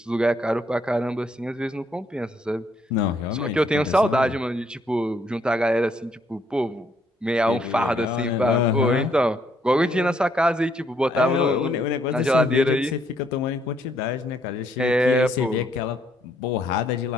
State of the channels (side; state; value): both; normal; correlation 0.70